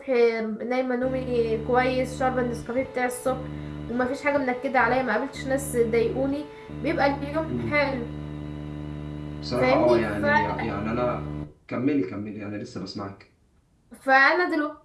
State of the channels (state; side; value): identical; both; correlation 1.00